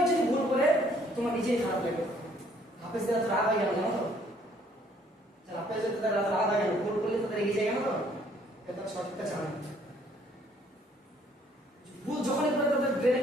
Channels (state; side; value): normal; both; correlation 0.63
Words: যদি ভুল করে তোমার নিজেই খারাপ লাগবে। হাফেজদের তো রাগ হয়ে গেল জানো তো? হাফেজদের রাগ হয়ে গেল, ভুল করলে তাদের এগিয়ে যায় কেন? তো তারা সঠিকটা জানে। ভুল যখনই করে তাদের ব্রেনে